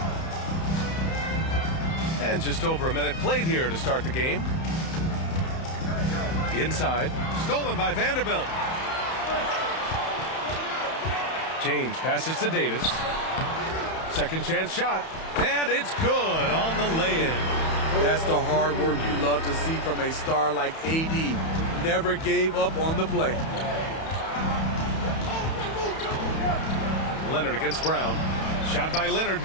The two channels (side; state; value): right; late; 31 ms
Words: And just over a minute played here to start the game. Inside, stolen by Vanderbilt. James passes to Davis. Second chance shot, and it's good on the lay-in. That's the hard work you love to see from a star like AD. Never gave up on the play. Leonard against Brown. Shot by Leonard,